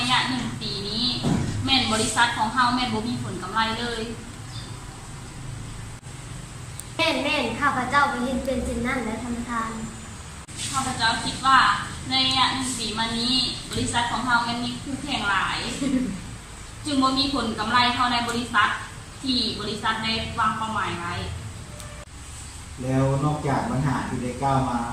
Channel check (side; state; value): both; identical; correlation 1.00